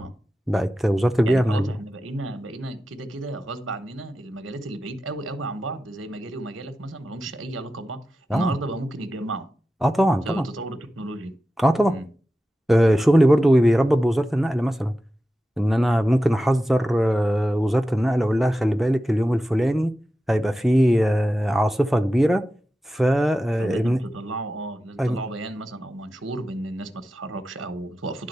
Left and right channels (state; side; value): normal; both; correlation 0.93